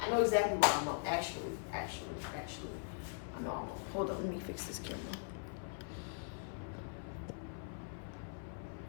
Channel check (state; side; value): silent; right; 51 dB below the other